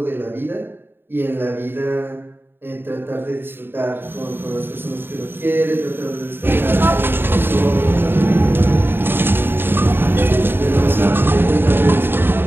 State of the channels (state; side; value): late; left; 0.10 ms